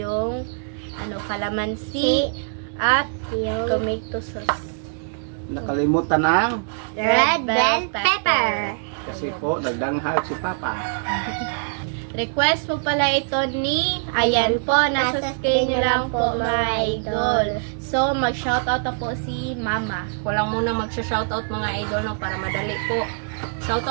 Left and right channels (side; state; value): left; silent; digital silence